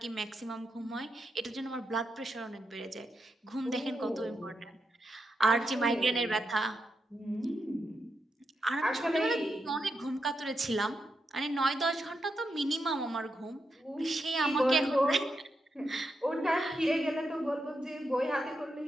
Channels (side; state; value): both; normal; correlation 0.85